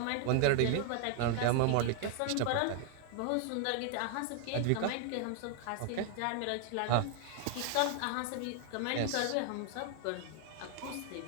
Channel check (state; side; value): different; both; correlation 0.00